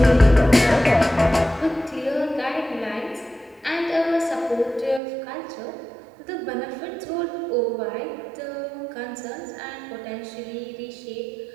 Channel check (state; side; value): drops out; left; at 5.0 s